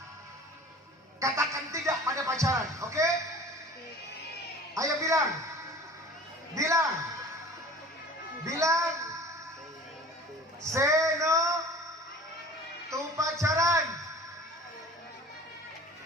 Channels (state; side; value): normal; both; correlation 0.43